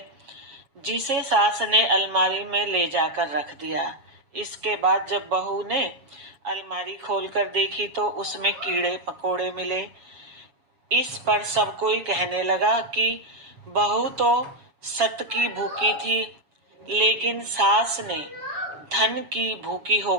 जिसे सास ने अलमारी में ले जाकर रख दिया। इसके बाद जब बहू ने अलमारी खोलकर देखी तो उसमें कीड़े पकोड़े मिले। इस पर सब कोई कहने लगा कि बहू तो सत की भूखी थी, लेकिन सास ने धन की भूखी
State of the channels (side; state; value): left; late; 7.3 ms